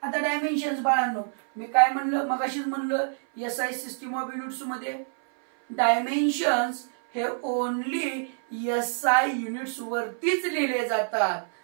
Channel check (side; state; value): left; silent; 59 dB below the other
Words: आता डायमेन्शन्स बाळांनो मी काय म्हणलं मगाशीच म्हणलं SI सिस्टीम ऑफ युनिट्स मध्ये डायमेन्शन्स हे ओनली SI युनिट्स वरतीच लिहिले जातात.